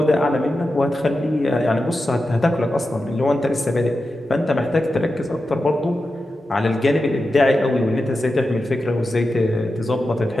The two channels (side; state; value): both; normal; correlation 0.91